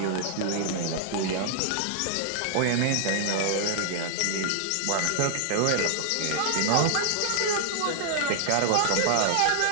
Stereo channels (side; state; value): both; different; correlation -0.01